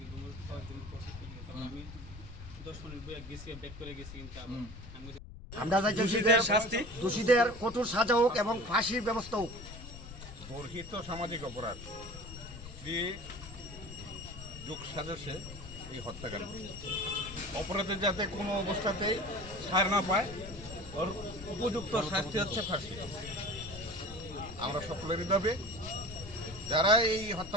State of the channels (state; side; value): noise; left; rumble, 13 dB below the sound